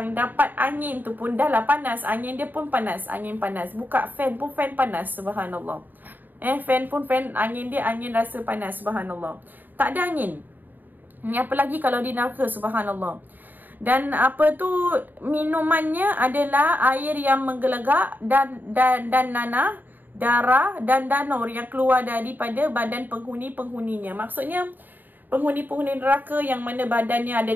dapat angin tu pun dah lah panas. Angin dia pun panas, angin panas. Buka fan pun fan panas, subhanallah. Fan pun fan, angin dia angin rasa panas, subhanallah. Tak ada angin. Ni apa lagi kalau di neraka, subhanallah. Dan apa tu, minumannya adalah air yang menggelegak dan nanah, darah dan danur yang keluar daripada badan penghuni-penghuninya. Maksudnya penghuni-penghuni neraka yang mana badannya ada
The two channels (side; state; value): left; late; 0.089 ms